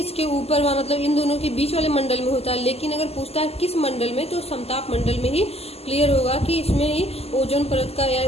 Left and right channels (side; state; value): right; late; 0.29 ms